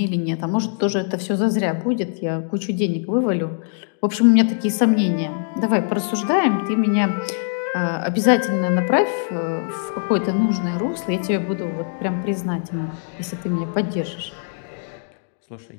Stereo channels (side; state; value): right; silent; 63 dB below the other